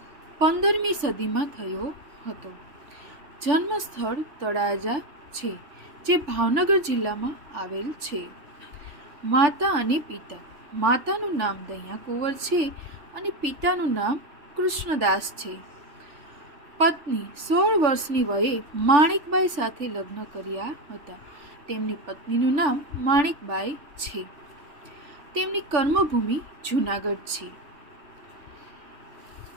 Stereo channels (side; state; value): left; late; 3.4 ms